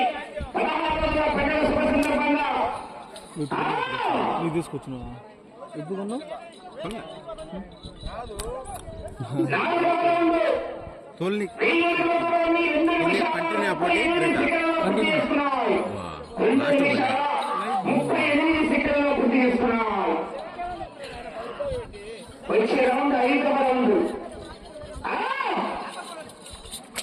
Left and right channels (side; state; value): both; identical; correlation 1.00